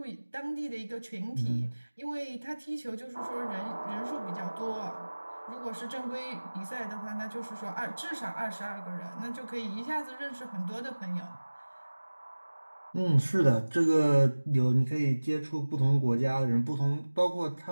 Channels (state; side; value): inverted; both; correlation -1.00